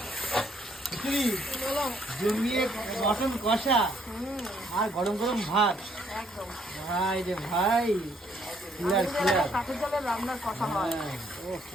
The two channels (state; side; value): normal; both; correlation 0.68